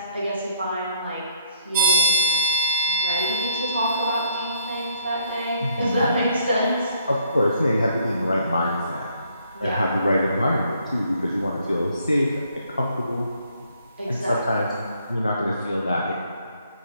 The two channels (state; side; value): inverted; both; correlation -0.66